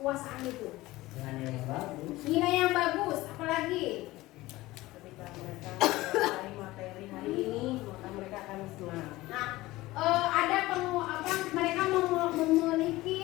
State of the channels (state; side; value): quieter; right; 18.5 dB